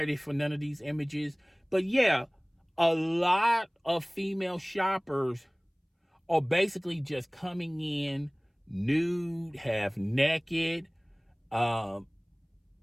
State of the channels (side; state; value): both; identical; correlation 1.00